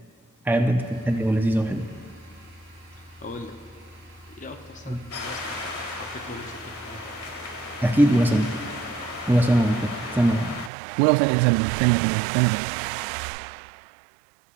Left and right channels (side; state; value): left; drops out; at 10.7 s